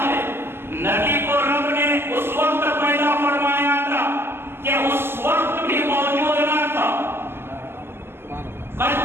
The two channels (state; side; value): late; left; 0.12 ms